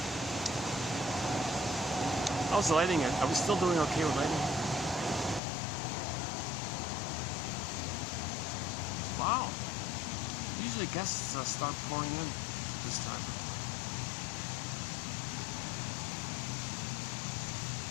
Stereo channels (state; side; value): drops out; right; at 5.4 s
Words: How's the lighting? Are we still doing okay with lighting? Wow. Usually guests start pouring in this time.